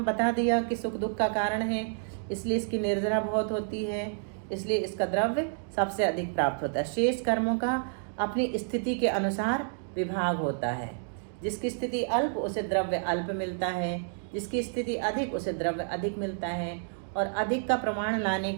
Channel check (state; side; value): silent; left; digital silence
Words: बता दिया कि सुख दुख का कारण है, इसलिए इसकी निर्जरा बहुत होती है, इसलिए इसका द्रव्य सबसे अधिक प्राप्त होता है। शेष कर्मों का अपनी स्थिति के अनुसार विभाग होता है। जिसकी स्थिति अल्प उसे द्रव्य अल्प मिलता है, जिसकी स्थिति अधिक उसे द्रव्य अधिक मिलता है। और अधिक का प्रमाण लाने